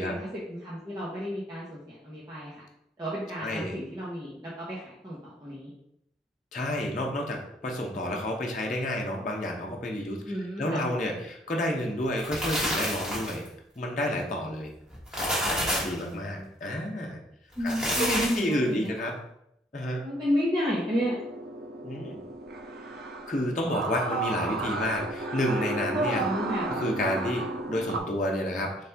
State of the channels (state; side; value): normal; both; correlation 0.61